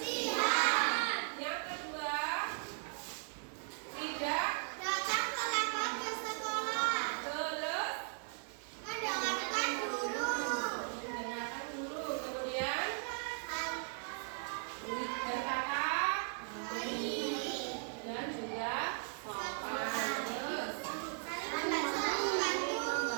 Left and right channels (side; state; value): left; silent; 53 dB below the other